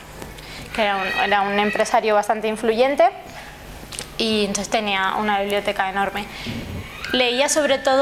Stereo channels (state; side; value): identical; both; correlation 1.00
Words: que era un empresario bastante influyente, y entonces tenía una biblioteca enorme. Leía sobre